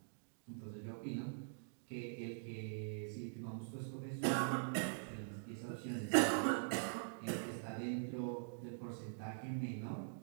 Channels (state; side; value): silent; left; digital silence